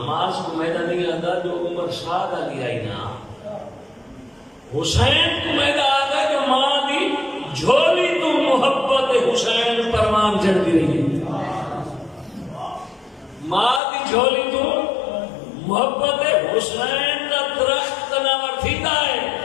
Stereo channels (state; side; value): drops out; right; at 13.8 s